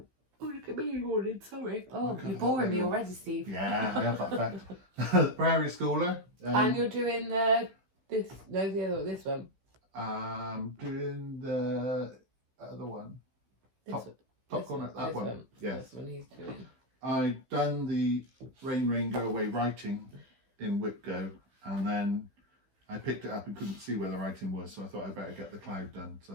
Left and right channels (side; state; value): left; late; 15 ms